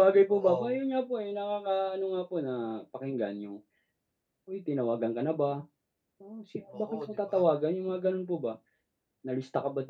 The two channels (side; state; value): both; identical; correlation 1.00